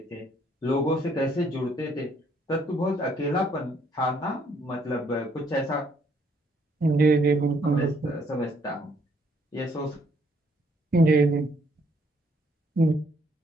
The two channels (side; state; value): both; normal; correlation 0.67